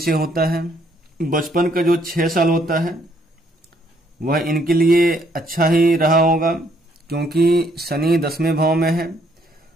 होता है। बचपन का जो 6 साल होता है वह इनके लिए अच्छा ही रहा होगा, क्योंकि शनि 10वें भाव में है,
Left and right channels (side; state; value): both; normal; correlation 0.68